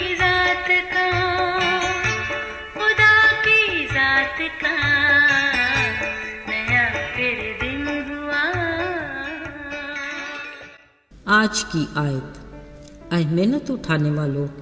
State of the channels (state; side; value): identical; both; correlation 1.00